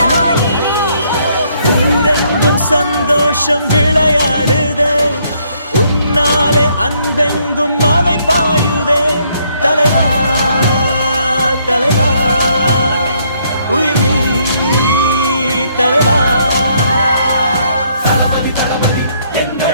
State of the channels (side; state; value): both; inverted; correlation -0.69